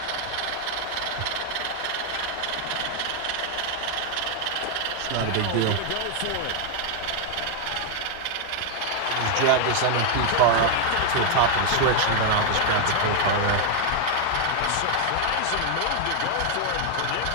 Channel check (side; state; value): both; different; correlation 0.00